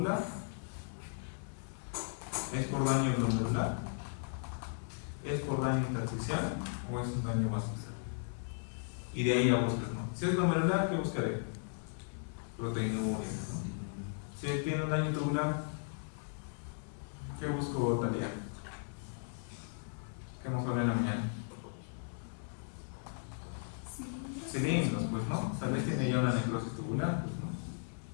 ¿Es por daño glomerular? ¿Es por daño intersticial o es un daño vascular? Y de ahí ya buscas, ¿no? Si es glomerular, ¿qué buscaré? Proteinuria, ¿no? Si tiene un daño tubular, ¿qué busco, Talia? ¿Qué hemos hablado en la mañana? Cilindros, pues, ¿no? Tal vez tiene ya una necrosis tubular, pues, ¿no?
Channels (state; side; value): silent; right; digital silence